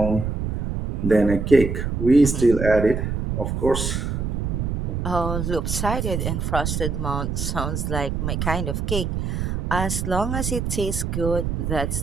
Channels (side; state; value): right; noise; rumble, 1 dB below the sound